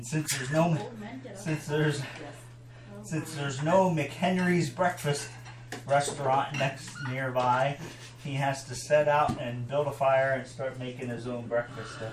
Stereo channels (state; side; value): identical; both; correlation 1.00